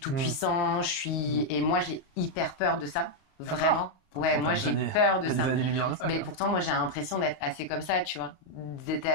puissant, et moi j'ai hyper peur de ça, vraiment. Ouais, moi j'ai peur de ça. Mais pourtant moi j'ai l'impression d'être assez comme ça, tu vois, d'être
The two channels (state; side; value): late; right; 38 ms